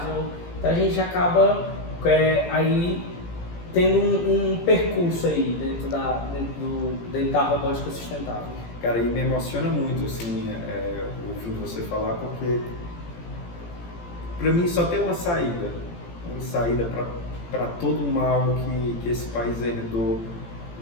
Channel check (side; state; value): right; late; 17 ms